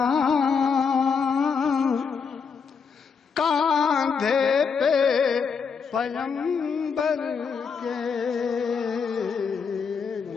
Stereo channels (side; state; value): right; quieter; 5.9 dB